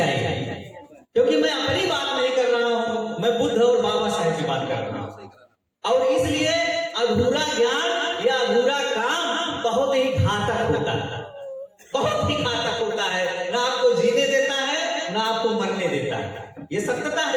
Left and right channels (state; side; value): identical; both; correlation 1.00